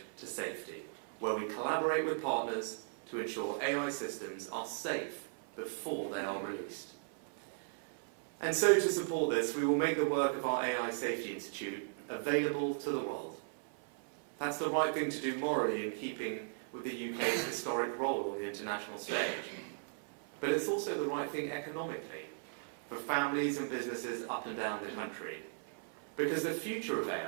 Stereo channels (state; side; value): silent; left; 53 dB below the other